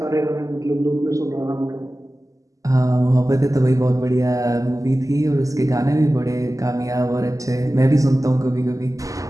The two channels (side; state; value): left; late; 0.16 ms